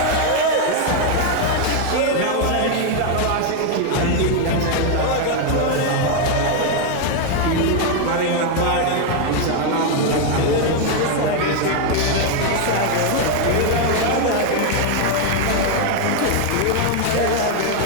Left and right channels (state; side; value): different; both; correlation 0.00